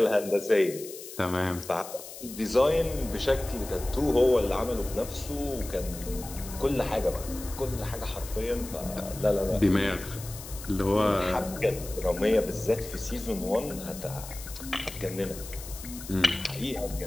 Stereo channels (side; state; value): left; noise; hiss, 13 dB below the sound